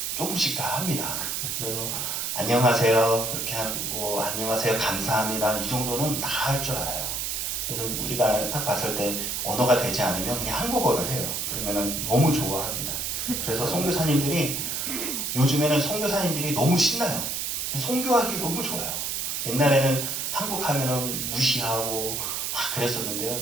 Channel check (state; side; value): noise; right; hiss, 2 dB below the sound